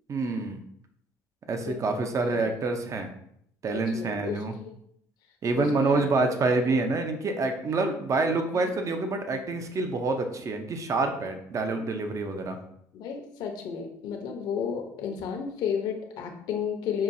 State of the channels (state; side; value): normal; both; correlation 0.61